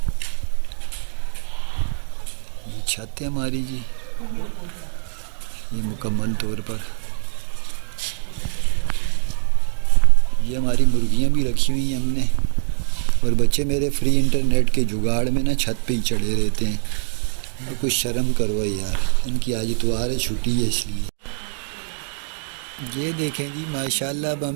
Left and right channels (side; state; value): left; silent; digital silence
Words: ये छत है हमारी जी, ये मुकम्मल तौर पर। ये हमारी मुर्गियाँ भी रखी हुई हैं हमने। और बच्चे मेरे फ्री इंटरनेट के जुगाड़ में ना छत पे ही चढ़े रहते हैं। तो कुछ शर्म करो यार, इनकी आज इतवार है, छुट्टी है इसलिए। ये देखें जी माशाल्लाह, अब